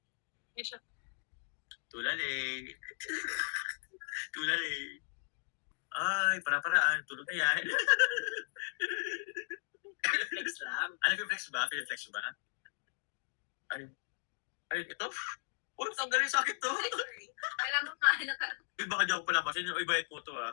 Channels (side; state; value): right; silent; digital silence